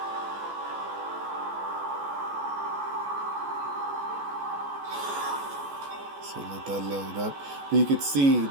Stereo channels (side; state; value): left; late; 14 ms